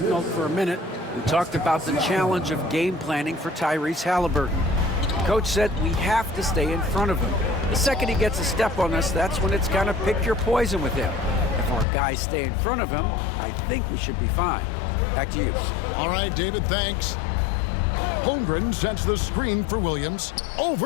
for a minute. We talked about the challenge of game planning for Tyrese Halliburton. Coach said we have to stay in front of him. The second he gets a step on us, that's when it's kind of pick your poison with him. If our guys stay in front of him, I think we should be fine. Back to you. All right, David, thanks. Holmgren sets the screen for Williams.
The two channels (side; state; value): right; drops out; at 11.9 s